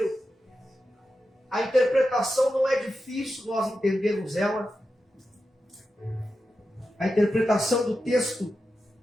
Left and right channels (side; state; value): both; normal; correlation 0.90